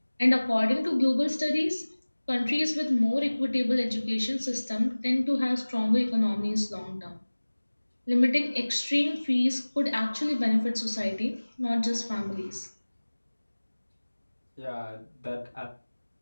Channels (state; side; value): inverted; both; correlation -1.00